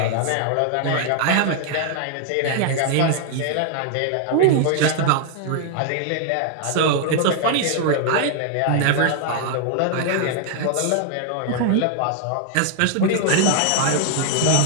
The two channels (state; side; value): different; both; correlation 0.00